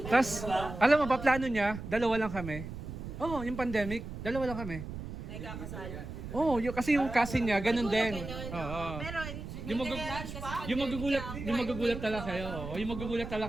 Tapos, alam mo ba, plano niya, dalawa lang kami. Oo, yung pandemic, dalawa lang kami. Oo, kasi yung cousin niya, ganun din. Oo. Pero, Yung magugulat talaga kayo. Oo, yung magugulat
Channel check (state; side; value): noise; right; rumble, 9 dB below the sound